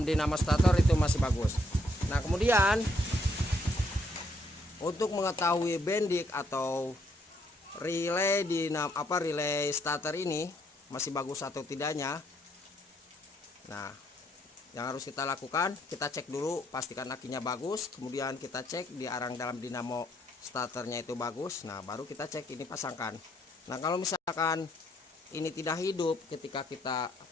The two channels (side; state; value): both; normal; correlation 0.71